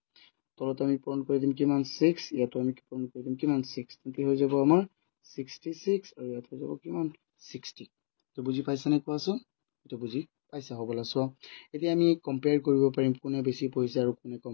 তলত আমি পূৰণ কৰি দিম কিমান 6 ইয়াতো আমি পূৰণ কৰি দিম কিমান 6 তেন্তে হৈ যাব আমাৰ 66 আৰু ইয়াত হৈ যাব কিমান 60 তো বুজি পাইছানে কোৱাচোন এটো বুজি পাইছা হ'বলা সো এতিয়া আমি কম্পেয়াৰ কৰিব পাৰিম কোনে বেছি পঢ়িছে আৰু কোনে কম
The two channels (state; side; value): silent; right; digital silence